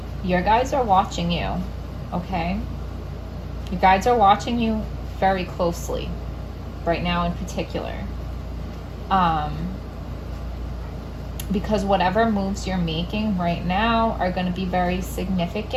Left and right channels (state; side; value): identical; both; correlation 1.00